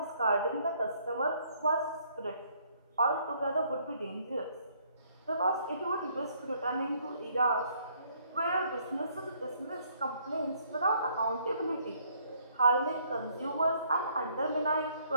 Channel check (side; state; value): both; inverted; correlation -0.66